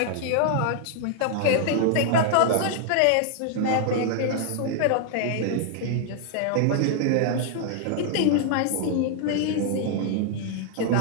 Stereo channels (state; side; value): different; both; correlation 0.00